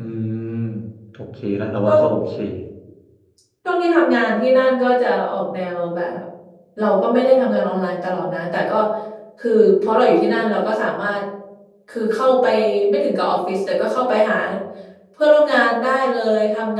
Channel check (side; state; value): both; identical; correlation 1.00